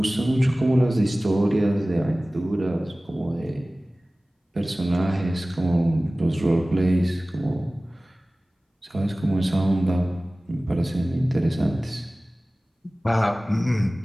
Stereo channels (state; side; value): normal; both; correlation 0.98